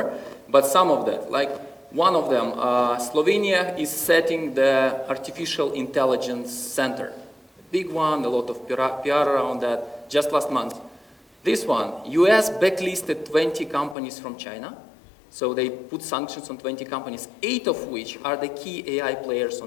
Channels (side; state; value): right; drops out; at 14.0 s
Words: but some of that, like one of them, Slovenia is setting the artificial intelligence center. Big one, a lot of PR around that, just last month. This one, US backlisted 20 companies from China. So they put sanctions on 20 companies, 8 of which are the key AI players